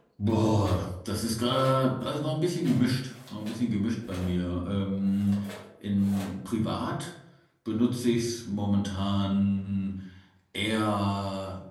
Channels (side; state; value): both; identical; correlation 1.00